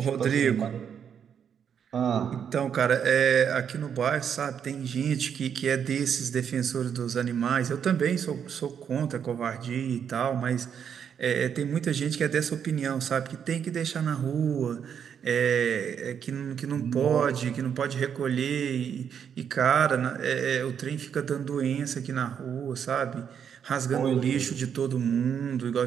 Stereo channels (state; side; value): quieter; left; 7.9 dB